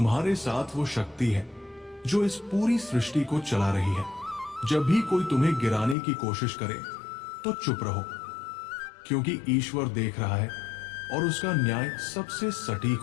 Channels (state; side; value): drops out; right; at 6.0 s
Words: साथ वो शक्ति है जो इस पूरी सृष्टि को चला रही है। जब भी कोई तुम्हें गिराने की कोशिश करे तो चुप रहो, क्योंकि ईश्वर देख रहा है और उसका न्याय सबसे सटीक